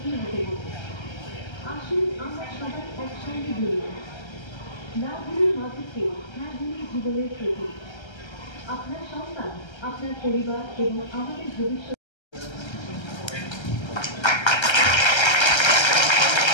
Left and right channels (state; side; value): late; right; 1.3 ms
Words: হতে হবে। আসুন আমরা সবাই একসঙ্গে বলি, না ভুলি মাদককে, হ্যাঁ ভুলি জীবনের প্রতি। আপনার সন্তান, আপনার পরিবার এবং আমাদের ভবিষ্যৎ